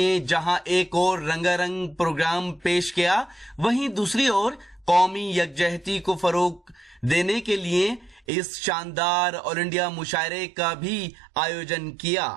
जहां एक और रंगारंग प्रोग्राम पेश किया, वहीं दूसरी ओर कौमी यकजहती को फरोग देने के लिए इस शानदार ऑल इंडिया मुशायरे का भी आयोजन किया।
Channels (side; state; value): left; drops out; at 8.2 s